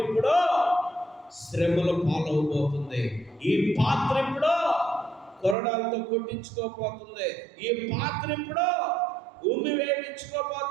ఇప్పుడు శ్రమల పాలవబోతుంది. ఈ పాత్ర ఇప్పుడు కొరడాలతో కొట్టించుకోబోతుంది. ఈ పాత్ర ఇప్పుడు భూమి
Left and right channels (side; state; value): left; drops out; at 5.6 s